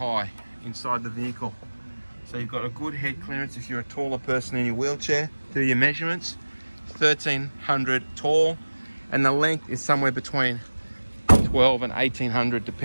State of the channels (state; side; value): inverted; both; correlation -1.00